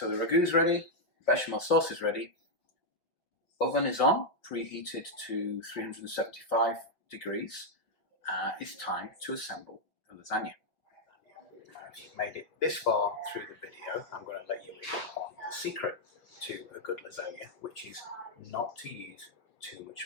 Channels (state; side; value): late; right; 5.7 ms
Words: the ragu's ready, bechamel sauce is ready, oven is on, preheated to 375 degrees. It's time to assemble the lasagna. If you've made it this far through the video, I'm going to let you in on the secret to a good lasagna, which is not to use too